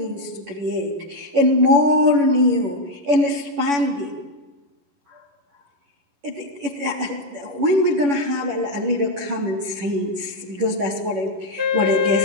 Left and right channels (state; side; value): late; left; 11 ms